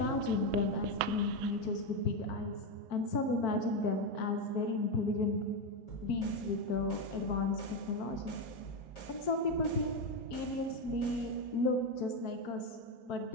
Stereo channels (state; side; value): normal; both; correlation 0.09